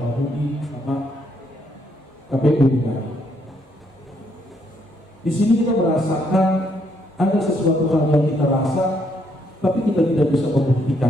Budi, sama KPU DKI. Di sini kita merasakan ada sesuatu hal yang kita rasa, tapi kita tidak bisa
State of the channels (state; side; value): normal; both; correlation 0.72